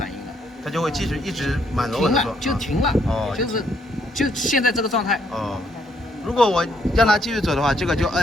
应了。它就会一直满楼停了就停了。哦，就现在这个状态。哦，如果我让它继续走的话，这个就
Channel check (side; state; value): both; normal; correlation 0.71